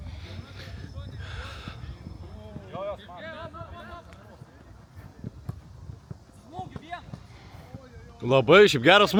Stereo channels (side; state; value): both; identical; correlation 1.00